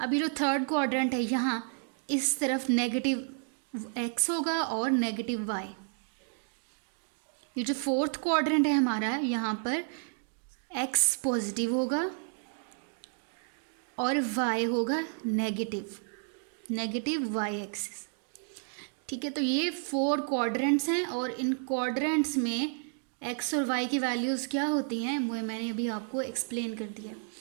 अभी जो थर्ड क्वाड्रेंट है, यहाँ इस तरफ नेगेटिव x होगा और नेगेटिव y। ये जो फोर्थ क्वाड्रेंट है हमारा, यहाँ पर x पॉजिटिव होगा और y होगा नेगेटिव y एक्सिस। ठीक है, तो ये 4 क्वाड्रेंट्स हैं और इन क्वाड्रेंट्स में x और y की वैल्यूज़ क्या होती हैं वो मैंने अभी आपको एक्सप्लेन कर दिया।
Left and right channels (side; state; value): left; silent; 56 dB below the other